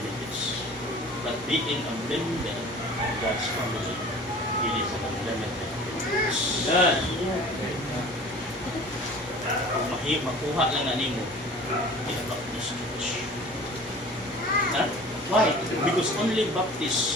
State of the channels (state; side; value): normal; both; correlation 0.43